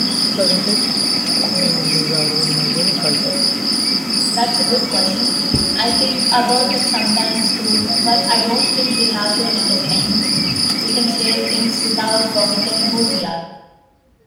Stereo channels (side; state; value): both; identical; correlation 1.00